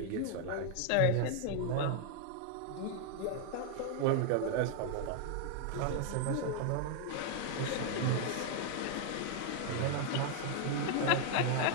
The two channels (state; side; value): different; both; correlation 0.00